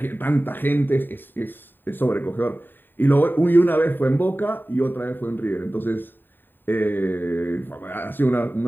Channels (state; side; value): late; right; 0.093 ms